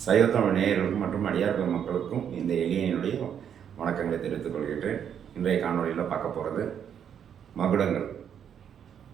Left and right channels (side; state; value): left; quieter; 8.5 dB